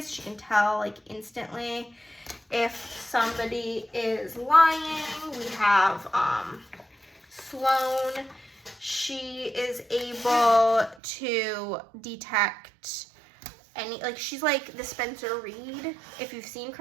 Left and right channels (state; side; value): drops out; left; at 11.0 s